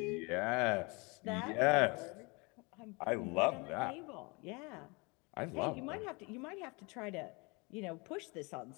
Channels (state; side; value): quieter; right; 28.4 dB